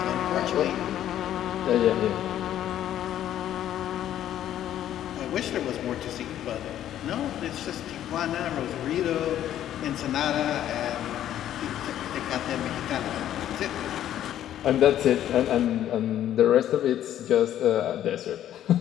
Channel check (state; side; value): quieter; right; 11.5 dB